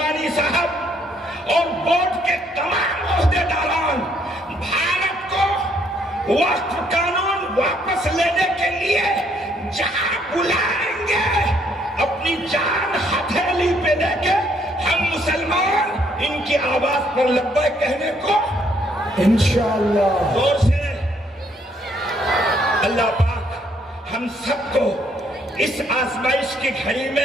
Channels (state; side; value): normal; both; correlation 0.68